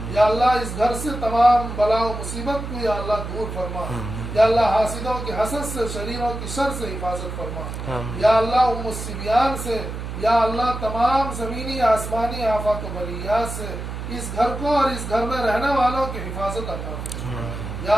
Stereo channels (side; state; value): right; noise; hum, 7 dB below the sound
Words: یا اللہ اس گھر سے تمام بلا و مصیبت کو یا اللہ دور فرما، یا اللہ حاسدوں کی حسد سے شریروں کی شر سے حفاظت فرما، یا اللہ ام الصبیان سے یا اللہ تمام زمینی آسمانی آفات و بلیات سے اس گھر کو اور اس گھر میں رہنے والوں کی حفاظت عطا فرما،